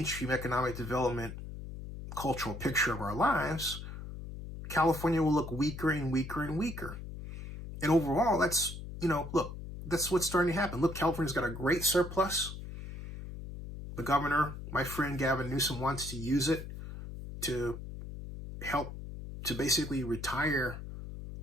economic development cultural picture of our lives, California will look weaker and weaker and weaker. And overall, that's, that's what's starting to happen. Look, California's got a great surplus. The governor, my friend Gavin Newsom, wants to use it to help to basically retire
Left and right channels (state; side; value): noise; left; hum, 10 dB below the sound